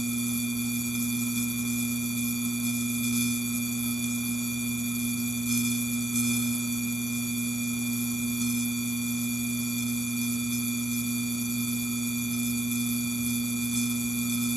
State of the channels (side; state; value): both; normal; correlation 0.74